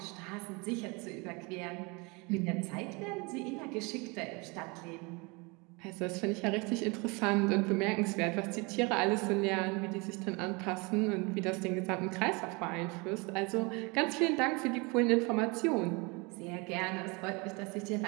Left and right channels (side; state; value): left; quieter; 28.3 dB